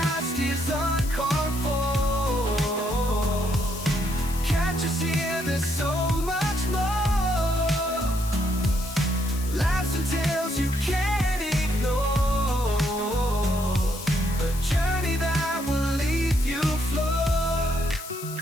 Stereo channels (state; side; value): noise; left; hiss, 12 dB below the sound